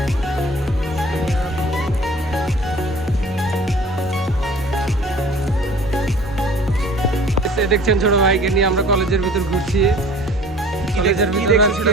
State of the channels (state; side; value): normal; both; correlation 0.48